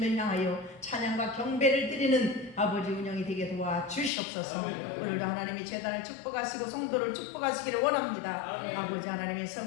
향하여 찬양과 경배를 드리는 아버지 운영이 되게 도와주시옵소서. 오늘도 하나님이 재단을 축복하시고 성도를 축복하시기를 원합니다. 아버지 하나님의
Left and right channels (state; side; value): drops out; right; at 4.1 s